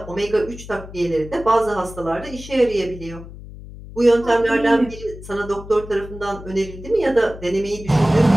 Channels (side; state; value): left; noise; hum, 15 dB below the sound